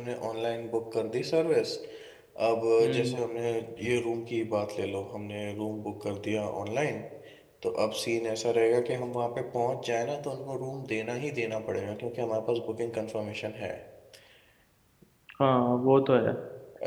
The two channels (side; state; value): both; identical; correlation 1.00